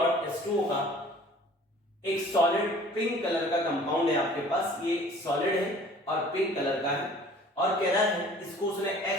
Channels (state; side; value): normal; both; correlation 0.50